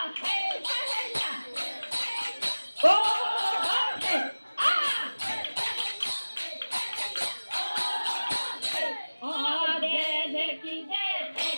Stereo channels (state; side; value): inverted; both; correlation -1.00